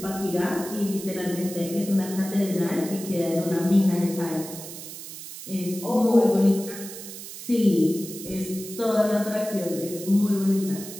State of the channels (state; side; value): noise; right; hiss, 12 dB below the sound